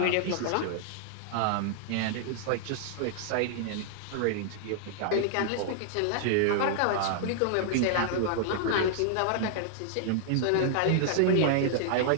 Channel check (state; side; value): different; both; correlation -0.01